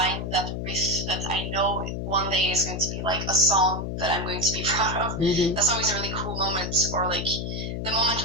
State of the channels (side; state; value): left; noise; hum, 4 dB below the sound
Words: that riff that I know one day is going to be like a song that I'm going to be proud of. That's always a really cool moment, or like the moment